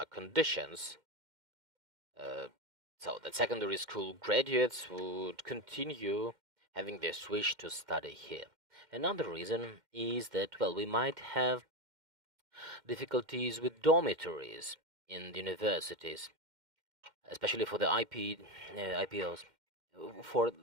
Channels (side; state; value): left; late; 2.1 ms